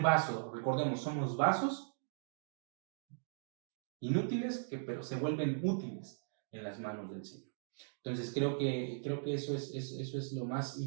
vaso. Recordemos, somos vasos inútiles, pero se vuelven útiles en las manos del Señor. Entonces creo que eso es lo más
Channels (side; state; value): left; silent; digital silence